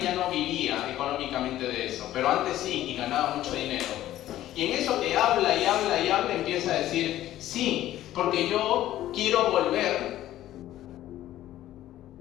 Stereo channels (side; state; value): right; quieter; 13.6 dB